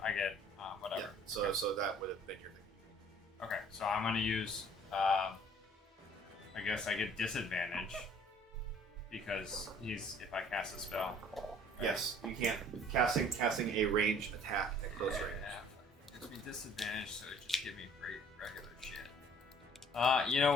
get whatever. Yeah. So that would have been your thing. Okay, so I'm gonna use. I guess I get disadvantage because if I cast a spell. Yes, you can't casting a ranged attack at close range. Yeah, gives me disadvantage, so it just give me great regular shit. You know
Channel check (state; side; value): normal; both; correlation 0.55